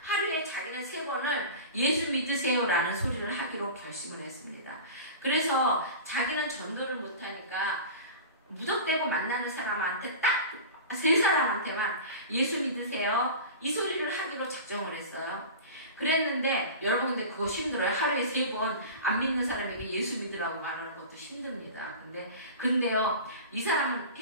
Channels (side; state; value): both; inverted; correlation -0.33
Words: 하루에 자기는 3번을 예수 믿으세요라는 소리를 하기로 결심을 했습니다. 그래서 자기는 전도를 못하니까 무덕대고 만나는 사람한테 딱 3사람한테만 예수 믿으세요 이 소리를 하기로 작정을 했어요. 그랬는데 여러분 근데 그거 힘들어요. 하루에 3번 안 믿는 사람에게 예수 믿으라고 말하는 것도 힘듭니다. 근데요 이 사람은